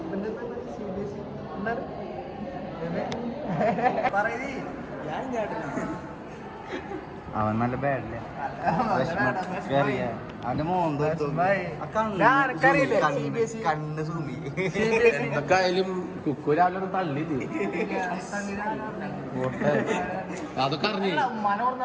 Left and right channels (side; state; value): both; identical; correlation 1.00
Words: അവൻ നല്ല ബാഡല്ലേ അവന്റെ കണ്ണ് സൂമി ഇതൊക്കെ ആയാലും കുക്കു രാവിലെ ഒന്ന് തള്ളിയില്ലേ അതൊക്കെ അറിഞ്ഞു